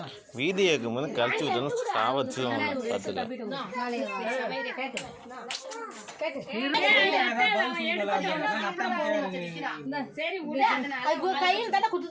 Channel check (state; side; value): identical; both; correlation 1.00